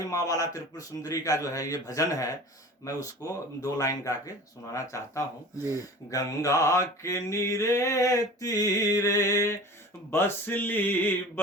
माँ वाला त्रिपुर सुंदरी का जो है ये भजन है, मैं उसको 2 लाइन गा के सुनाना चाहता हूँ। गंगा के नीरे तीरे बसली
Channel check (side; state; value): both; normal; correlation 0.40